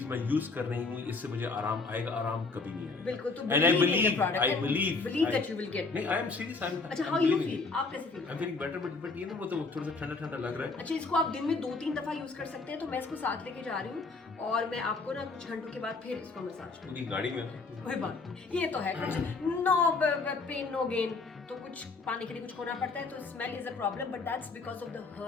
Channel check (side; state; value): right; quieter; 3.9 dB